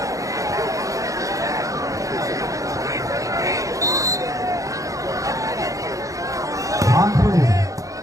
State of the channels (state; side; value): late; left; 0.16 ms